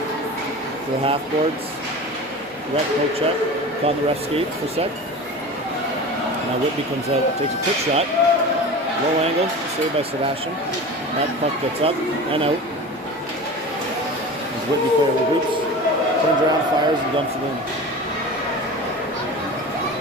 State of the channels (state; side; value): normal; both; correlation 0.33